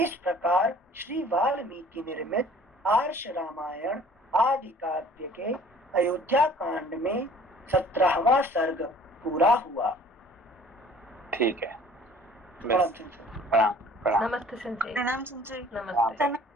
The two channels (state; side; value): normal; both; correlation 0.51